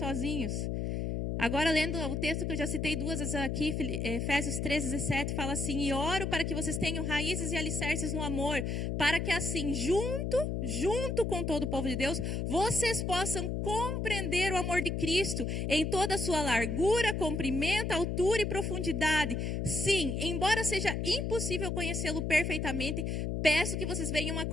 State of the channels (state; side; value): noise; left; hum, 1 dB below the sound